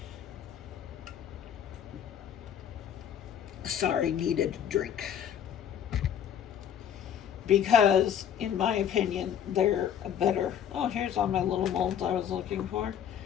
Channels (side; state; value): right; quieter; 9.2 dB